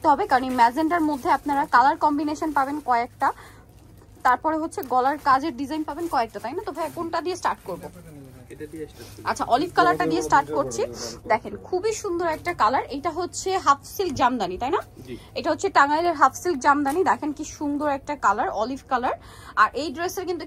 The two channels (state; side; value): identical; both; correlation 1.00